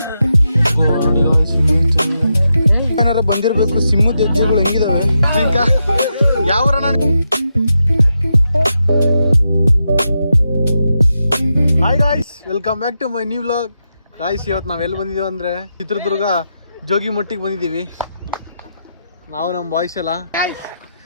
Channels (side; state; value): both; inverted; correlation -0.86